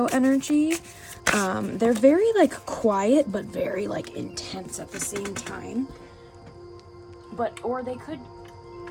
energy. They're very quiet, but very intense at the same time. Or they could...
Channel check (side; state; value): both; identical; correlation 1.00